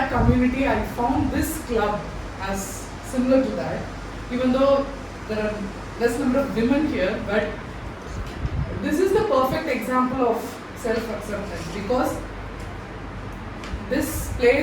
community, I found this club as similar to that, even though there are less number of women here, but this is the perfect example of self-acceptance, because this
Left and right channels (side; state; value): both; identical; correlation 1.00